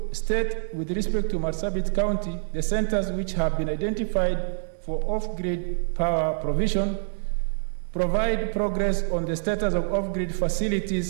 State with respect to Marsabit County the centers which have been identified for off-grid power provision. Provide progress on the status of off-grid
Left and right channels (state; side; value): silent; left; digital silence